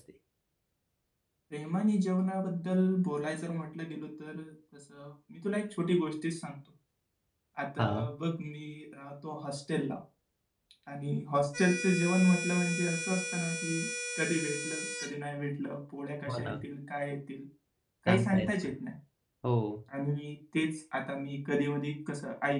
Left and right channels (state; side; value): identical; both; correlation 1.00